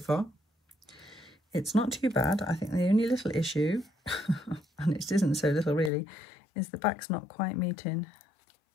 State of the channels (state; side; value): drops out; right; at 5.9 s